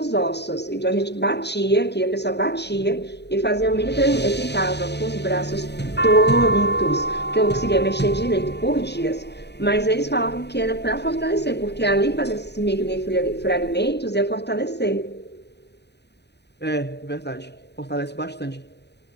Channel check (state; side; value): late; right; 0.49 ms